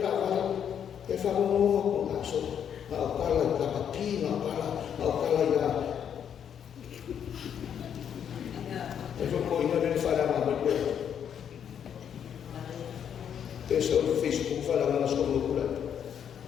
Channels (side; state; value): right; quieter; 8.5 dB